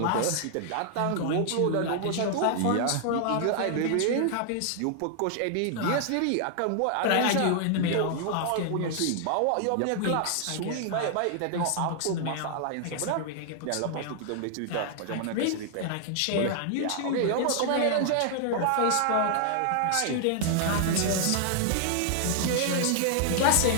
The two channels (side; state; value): both; different; correlation 0.00